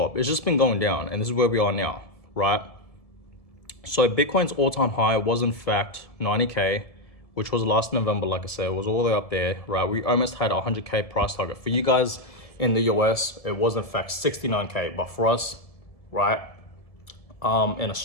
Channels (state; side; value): late; right; 1.7 ms